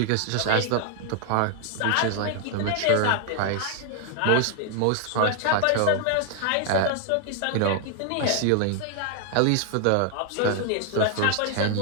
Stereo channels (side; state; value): both; different; correlation 0.00